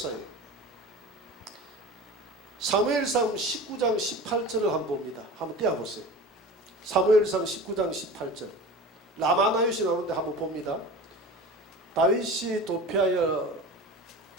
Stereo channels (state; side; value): normal; both; correlation 0.35